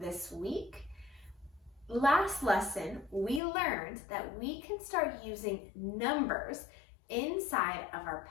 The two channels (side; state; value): right; drops out; at 3.4 s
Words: week. Last lesson, we learned that we can start using numbers inside of our